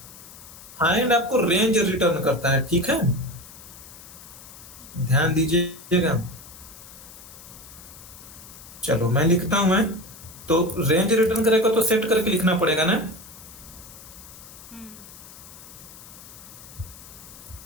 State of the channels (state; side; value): noise; left; hiss, 18 dB below the sound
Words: फाइंड आपको रेंज रिटर्न करता है, ठीक है, ध्यान दीजिएगा। चलो मैं लिखता हूं, मैं तो रेंज रिटर्न करेगा तो सेट करके लिखना पड़ेगा ना।